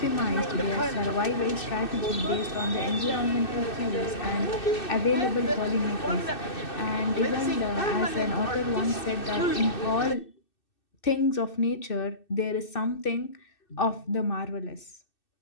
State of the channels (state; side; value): late; right; 2.6 ms